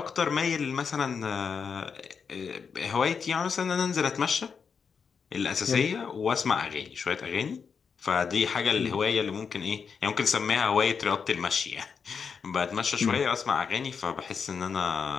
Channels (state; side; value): quieter; right; 6.1 dB